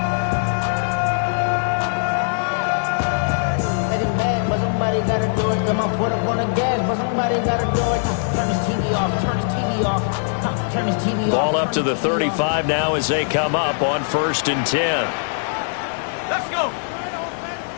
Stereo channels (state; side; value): silent; right; digital silence